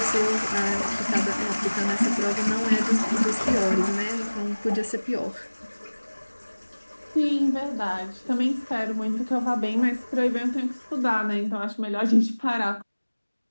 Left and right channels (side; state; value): both; inverted; correlation -1.00